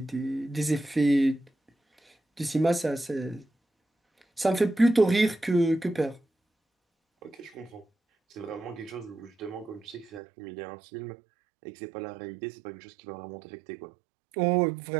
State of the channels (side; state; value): left; drops out; at 10.2 s